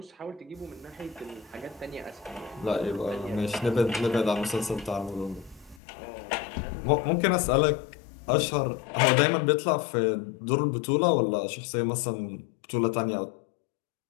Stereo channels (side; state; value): right; drops out; at 5.8 s